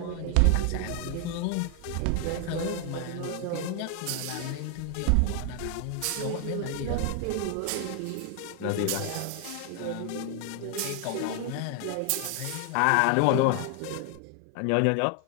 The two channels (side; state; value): both; different; correlation 0.00